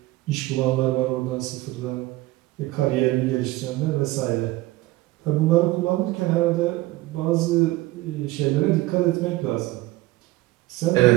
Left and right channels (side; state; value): left; quieter; 18.7 dB